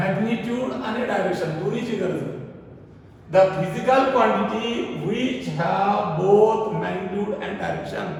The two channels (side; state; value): both; identical; correlation 1.00